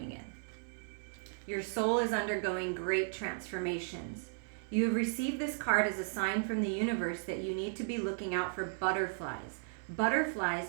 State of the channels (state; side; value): silent; left; digital silence